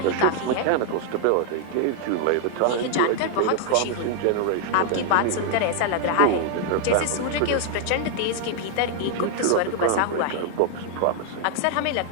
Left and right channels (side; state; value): both; different; correlation 0.00